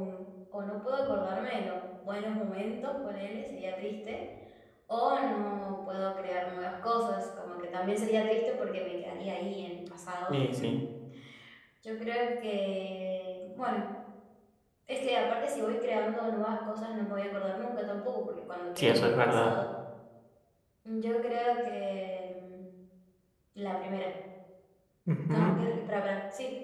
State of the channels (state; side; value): identical; both; correlation 1.00